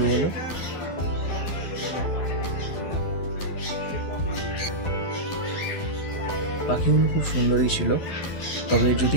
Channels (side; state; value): right; late; 11 ms